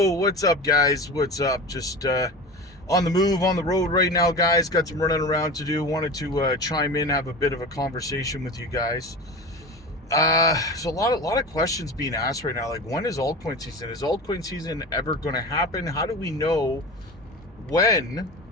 what's up, guys? What's up? Just on the move, on the road right now, guys. Got some running around to do. Wanted to chime in, have a bit of a conversation with you guys. So a lot of questions being asked right now. Like, when is altcoin season? Is altcoin season ever going to happen? How do we know when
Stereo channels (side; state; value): both; normal; correlation 0.30